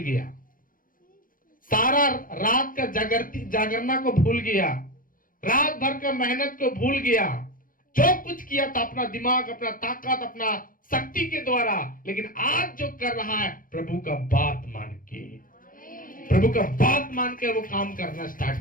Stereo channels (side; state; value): right; late; 0.40 ms